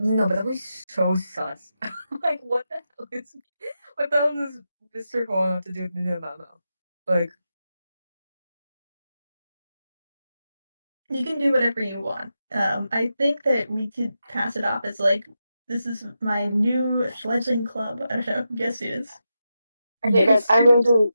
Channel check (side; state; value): both; inverted; correlation -0.88